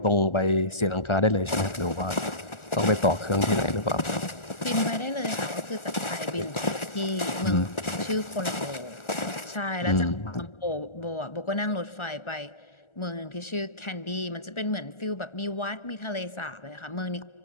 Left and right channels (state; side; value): late; right; 1.4 ms